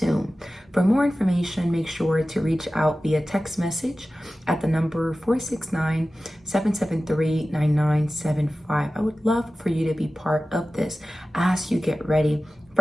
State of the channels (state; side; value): normal; both; correlation 0.95